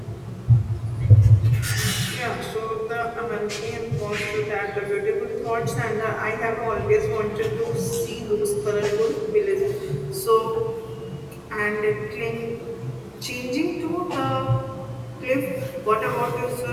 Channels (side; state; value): both; identical; correlation 1.00